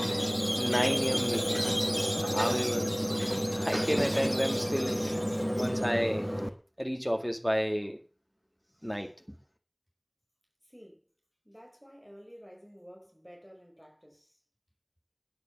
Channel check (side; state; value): both; identical; correlation 1.00